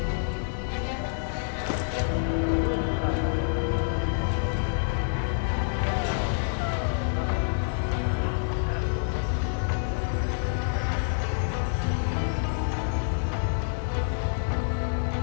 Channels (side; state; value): right; silent; 60 dB below the other